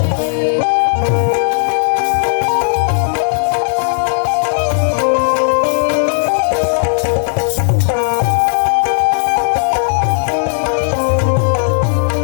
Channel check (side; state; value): right; silent; digital silence